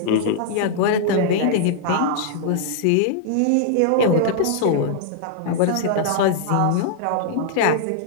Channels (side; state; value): both; different; correlation -0.01